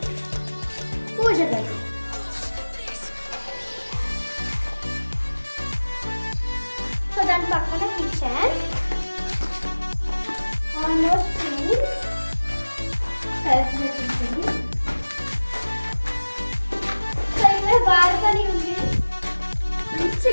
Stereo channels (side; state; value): both; inverted; correlation -1.00